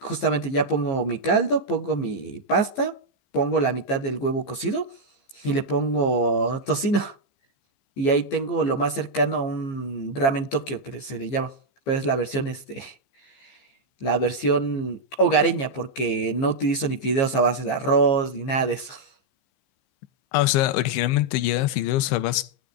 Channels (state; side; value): late; right; 15 ms